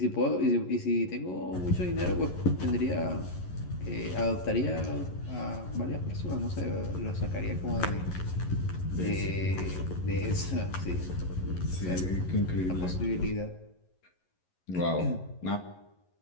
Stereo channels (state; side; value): late; right; 11 ms